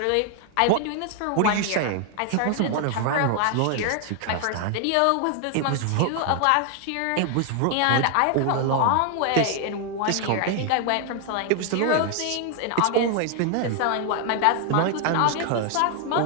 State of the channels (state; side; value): different; both; correlation 0.00